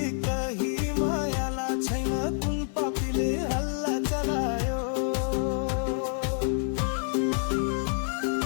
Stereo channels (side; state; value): right; silent; 59 dB below the other